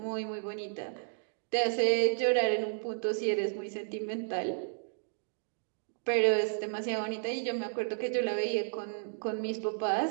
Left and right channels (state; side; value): silent; left; digital silence